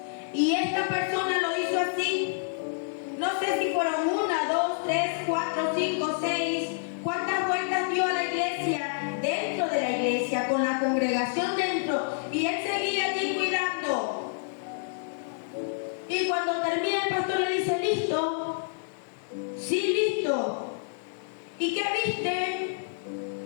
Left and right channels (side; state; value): right; silent; digital silence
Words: Y esta persona lo hizo así. No sé si fueron 1, 2, 3, 4, 5, 6. ¿Cuántas vueltas dio a la iglesia? Dentro de la iglesia, con la congregación dentro. Y él seguía allí cuidando. Y cuando termina el pastor le dice: ¿listo? Sí, listo. ¿Y qué viste?